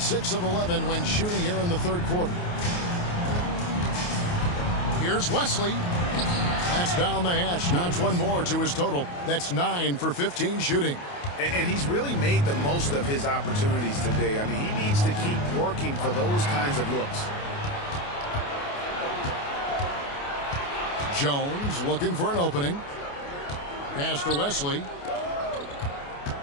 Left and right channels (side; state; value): right; late; 28 ms